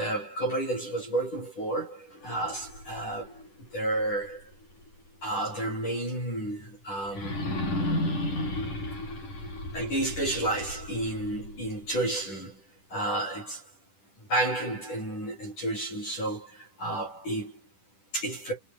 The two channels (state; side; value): late; right; 10 ms